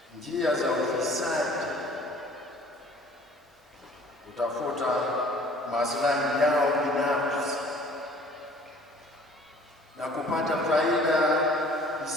njia za ufisadi kutafuta maslahi yao binafsi na kupata faida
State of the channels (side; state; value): both; normal; correlation 0.51